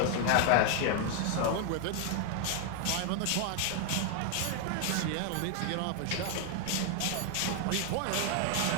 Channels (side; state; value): both; different; correlation 0.01